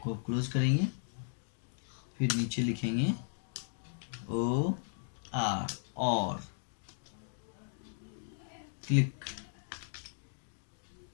क्लोज करेंगे। फिर नीचे लिखेंगे OR और क्लिक,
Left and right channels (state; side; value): silent; right; digital silence